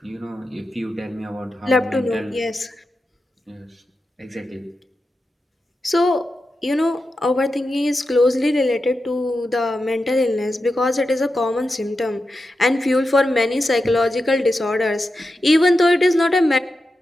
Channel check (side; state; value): both; normal; correlation 0.90